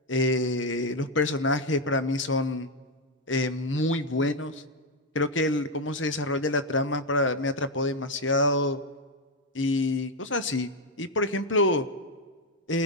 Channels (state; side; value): normal; both; correlation 0.06